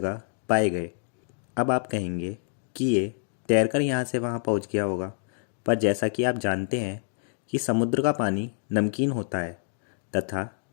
पाए गए। अब आप कहेंगे कि ये तैरकर यहाँ से वहाँ पहुँच गया होगा, पर जैसा कि आप जानते हैं कि समुद्र का पानी नमकीन होता है तथा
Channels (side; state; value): right; silent; digital silence